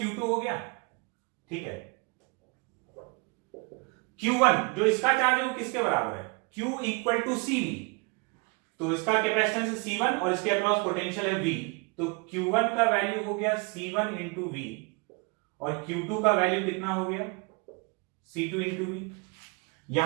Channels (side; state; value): left; quieter; 30.1 dB